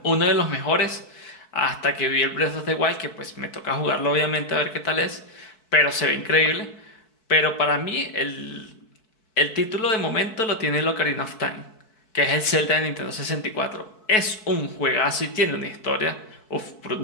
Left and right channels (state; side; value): late; right; 4.6 ms